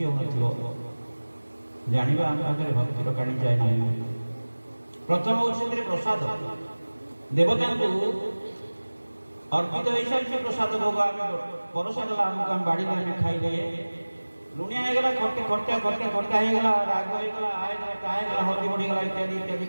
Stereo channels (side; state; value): both; inverted; correlation -1.00